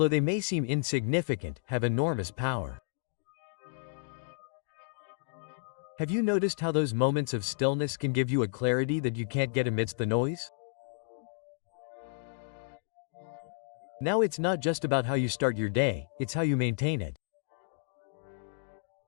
they may seem insignificant, have enormous power. Have you noticed how those moments of stillness can give you a clarity that you can't get amidst the noise? Now it's not just about how you start your day, it's how you maintain it.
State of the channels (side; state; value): right; silent; digital silence